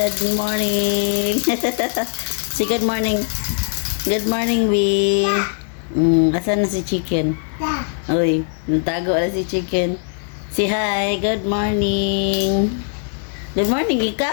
morning. Si good morning. Good morning, Bee. Asan na si chicken? Uy, natago na si chicken. Si hi, good morning. Good morning,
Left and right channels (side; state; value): right; silent; digital silence